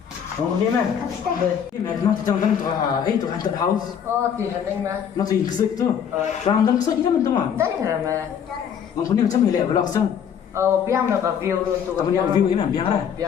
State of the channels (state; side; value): quieter; right; 8.1 dB